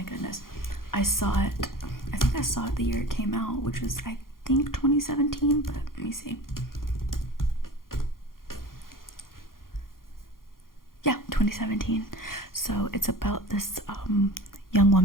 goodness. I think I saw it the year it came out, which was, I think, 2017, but let me see. Yeah, 2017. So it's about this young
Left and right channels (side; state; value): right; late; 0.91 ms